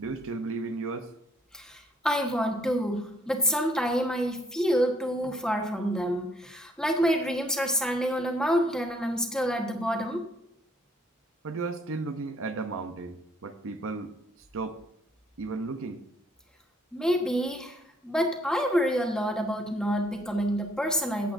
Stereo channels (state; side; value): normal; both; correlation 0.65